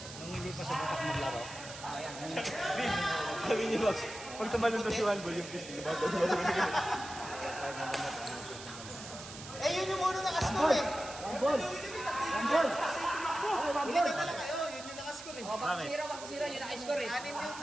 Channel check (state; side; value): noise; right; hiss, 13 dB below the sound